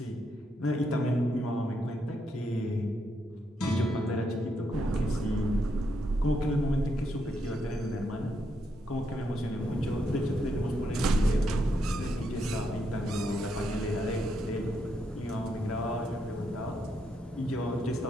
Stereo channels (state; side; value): normal; both; correlation 0.79